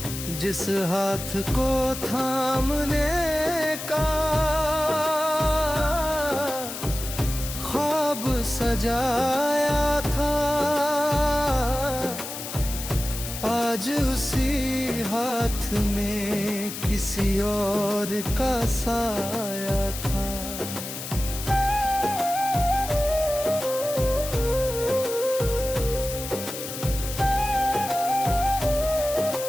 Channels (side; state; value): left; noise; hiss, 8 dB below the sound